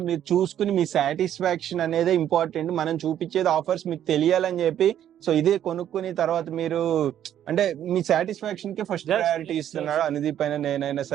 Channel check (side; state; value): left; quieter; 10.7 dB